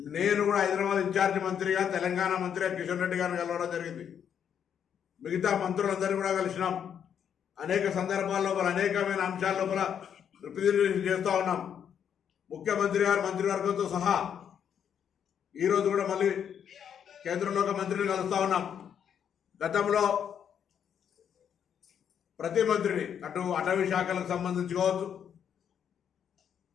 నేను కూడా హైదరాబాద్ ఇన్ఛార్జి మంత్రిగా తెలంగాణ మంత్రిగా కిషన్ రెడ్డి గారిని కలవడం జరిగింది. మిగతా మంత్రులందరినీ కూడా కలిసినాం. అనేక సందర్భాల లోపల అనేకమైన అంశాల లోపల రిప్రజెంటేషన్ చేస్తూ ఉన్నాం. ముఖ్యమంత్రి గారు మంత్రివర్గంతో సహా ఈరోజు కూడా మళ్ళీ కేంద్రంలో ఒక మంత్రిని కలుస్తూ ఉన్నాం. గతంలో ప్రతి మంత్రిని అటు అటవీ శాఖలకు సంబంధించి కావచ్చు,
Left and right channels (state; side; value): quieter; right; 8.4 dB